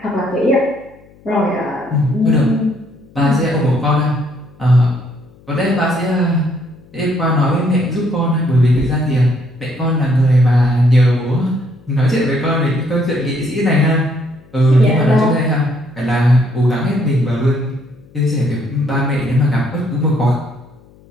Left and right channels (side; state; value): left; noise; hum, 27 dB below the sound